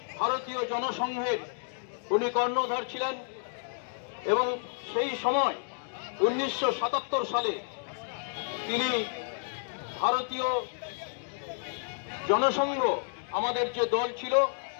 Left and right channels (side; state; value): right; silent; digital silence